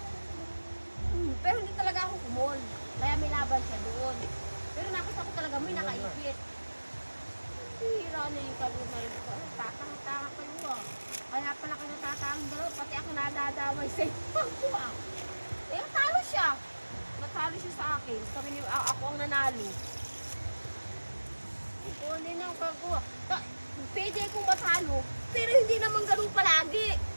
Pero hindi talaga ako kumol. Kaya may laban siya doon. Pero nakita ko talaga may nakaipit. Hira na yung kalunay ko. Tatang-tanga kayo ah. Kaya pala kayo natatang dalawa. Pati ako nadadamay sa iyo. Eh, talo siya. Natalo siya sa akin. Ako ang nanalo. Hindi na ako kagawa. Pwede akong matalo. Pero hindi naman ganun palagi.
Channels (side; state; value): both; inverted; correlation -1.00